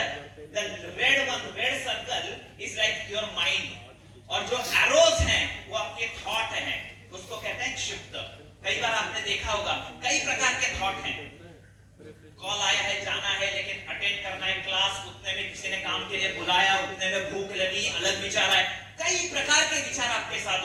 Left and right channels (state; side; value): identical; both; correlation 1.00